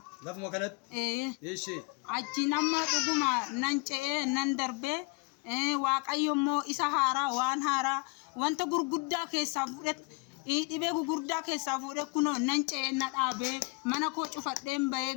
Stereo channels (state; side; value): quieter; right; 28.2 dB